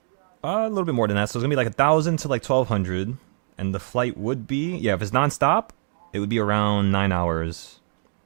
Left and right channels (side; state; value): left; silent; digital silence